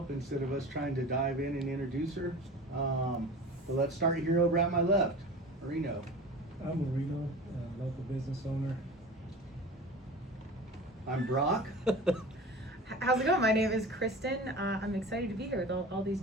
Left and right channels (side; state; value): both; normal; correlation 0.36